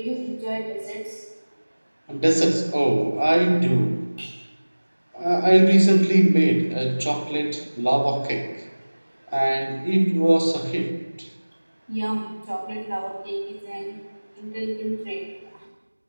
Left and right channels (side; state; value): both; inverted; correlation -1.00